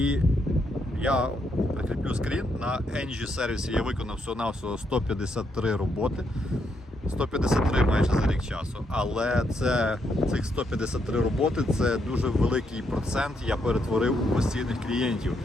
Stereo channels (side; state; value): both; normal; correlation 0.77